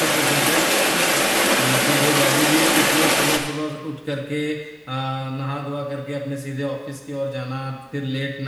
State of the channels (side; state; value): both; identical; correlation 1.00